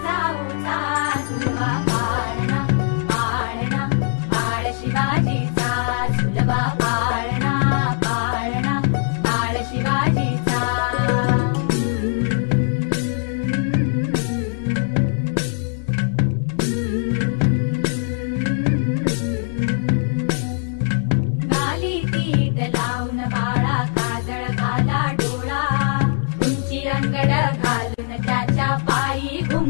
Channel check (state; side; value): silent; right; 60 dB below the other